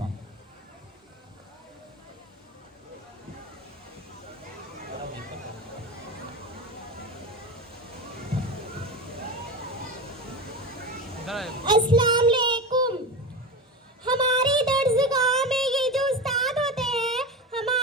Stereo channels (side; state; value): both; normal; correlation 0.23